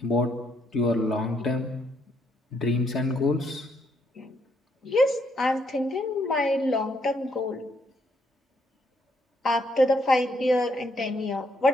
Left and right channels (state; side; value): normal; both; correlation 0.73